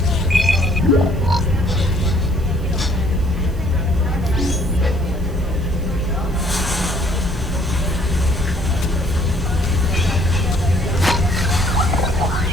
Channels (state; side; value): noise; right; hiss, 25 dB below the sound